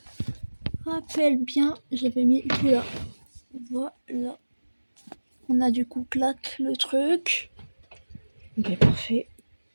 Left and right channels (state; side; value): inverted; both; correlation -1.00